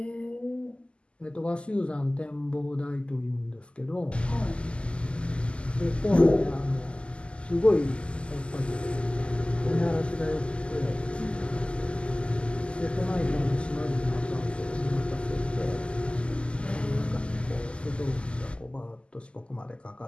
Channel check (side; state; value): right; late; 0.053 ms